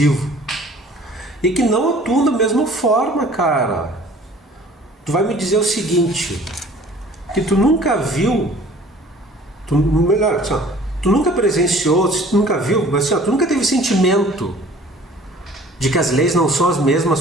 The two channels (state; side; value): normal; both; correlation 0.50